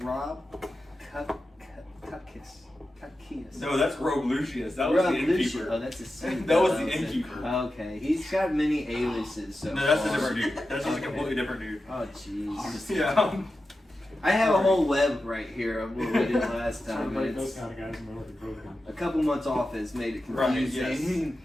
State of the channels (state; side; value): normal; both; correlation 0.92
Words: Cuckius. No, that's Rogue Lucius. That was the innkeeper. Oh, that's a secret. That was the innkeeper. Okay, he's got many aliases. So no, that's a different dude. That's just a completely different dude. Oh, jeez. Yeah. I have a whole web right here of what we did last time. Those kind of guys know broken. A couple months off has made it confusing.